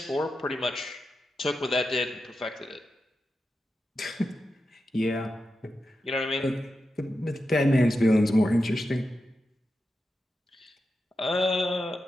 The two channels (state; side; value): normal; both; correlation 0.90